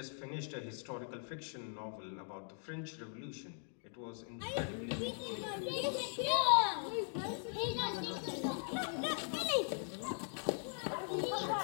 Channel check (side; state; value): right; silent; 51 dB below the other